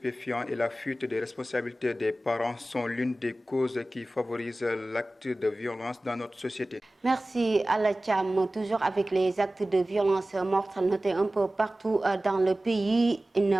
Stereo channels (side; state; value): both; normal; correlation 0.97